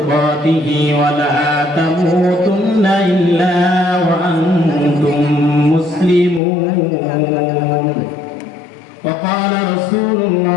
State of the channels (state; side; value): drops out; right; at 6.4 s